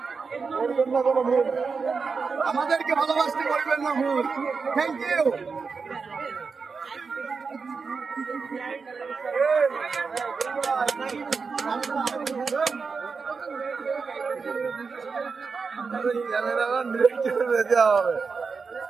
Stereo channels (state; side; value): quieter; left; 5.0 dB